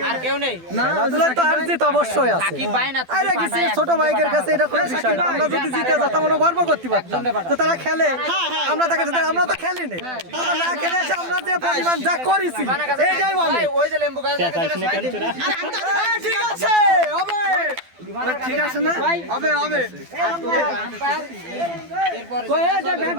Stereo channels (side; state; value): left; late; 12 ms